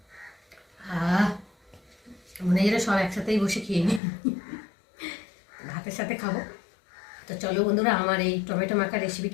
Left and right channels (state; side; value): drops out; right; at 4.0 s